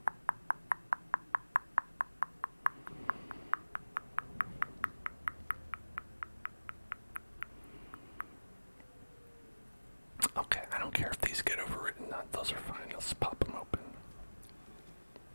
Okay, I don't care if these get overwritten. Those are fine. Let's pop them open.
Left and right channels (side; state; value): both; inverted; correlation -1.00